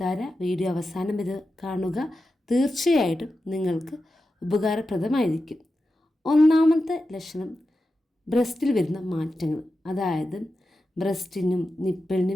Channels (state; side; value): normal; both; correlation 0.91